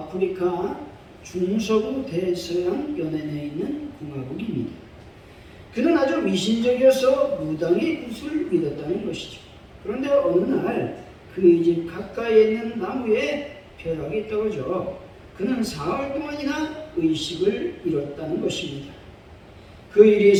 중서부 대서양 연안에 있는 공화국입니다. 그는 아주 미신적이어서 무당의 굿을 믿었다는 것이죠. 그런데 어느 날 그의 집 가까이에 있는 나무에 벼락이 떨어져 그는 사흘 동안이나 의식을 잃었다는 것입니다. 그 일이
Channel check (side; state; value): both; identical; correlation 1.00